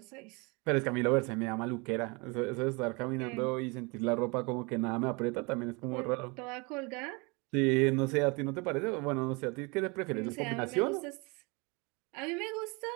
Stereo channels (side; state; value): left; quieter; 28.8 dB